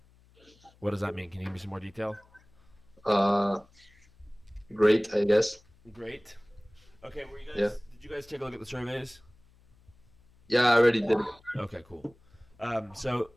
What does that mean? Can you give me some more detail? Uh, Great, I guess. Great. Okay, were you Yeah. guys? Did you guys take a look at the surveys? Yeah, I already did it. Okay, cool. So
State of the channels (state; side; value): noise; left; hum, 29 dB below the sound